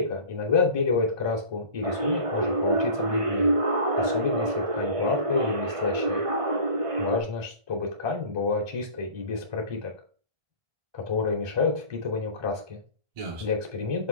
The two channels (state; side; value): late; left; 1.2 ms